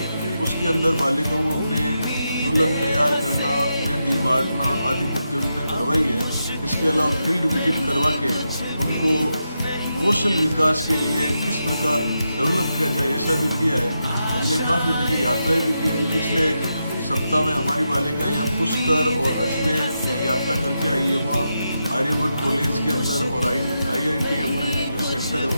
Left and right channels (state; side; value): inverted; both; correlation -0.86